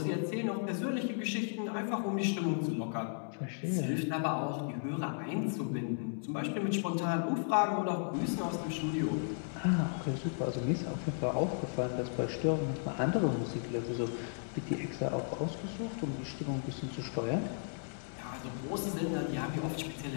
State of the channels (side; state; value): right; silent; digital silence